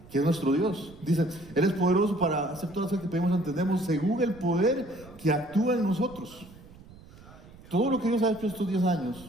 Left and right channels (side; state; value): right; noise; rumble, 21 dB below the sound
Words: que es nuestro Dios. Dice, Él es poderoso para hacer todas las cosas que pedimos y entendemos según el poder que actúa en nosotros. Todo lo que Dios ha hecho estos 10